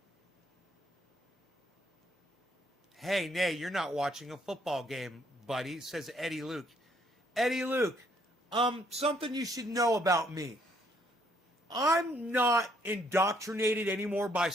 Hey, nay, you're not watching a football game, buddy, says Eddie Luke. Eddie Luke, something you should know about me. I'm not indoctrinated anymore by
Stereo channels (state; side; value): normal; both; correlation 0.68